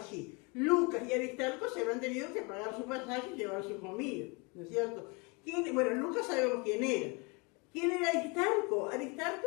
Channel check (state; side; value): quieter; right; 29.8 dB